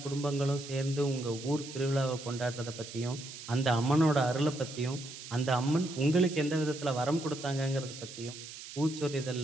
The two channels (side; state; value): right; noise; hiss, 13 dB below the sound